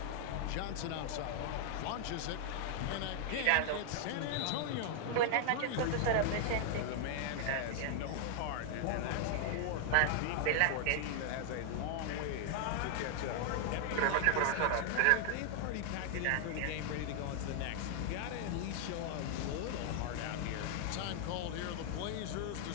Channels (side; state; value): both; different; correlation 0.00